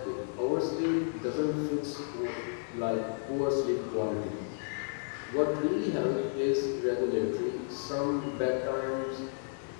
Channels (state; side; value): silent; right; digital silence